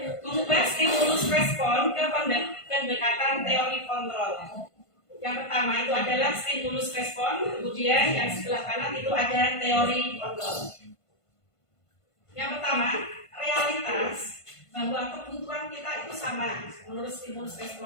Mengubah stimulus respon ke pendekatan teori kontrol. Yang pertama itu adalah stimulus respon, kemudian yang sebelah kanan itu ada teori kontrol. Yang pertama, realitas bahwa kebutuhan kita itu sama menurut stimulus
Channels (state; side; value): late; right; 1.5 ms